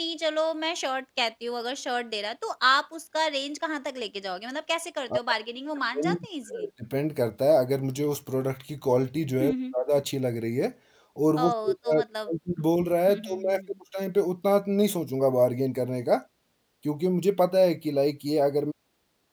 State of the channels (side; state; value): both; identical; correlation 1.00